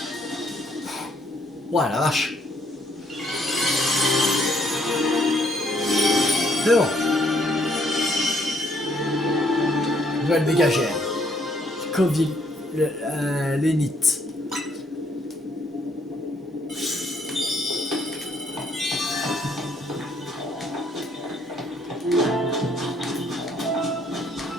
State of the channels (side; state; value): both; normal; correlation 0.68